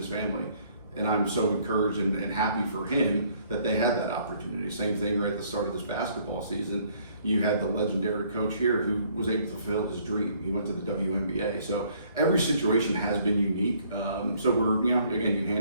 family. And I'm so encouraged and happy for him that they had that opportunity. Same thing right at the start of this basketball season. You had the legendary coach here who was able to fulfill his dream. He went to the WNBA. So every situation has been unique. So again, you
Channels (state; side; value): inverted; both; correlation -0.63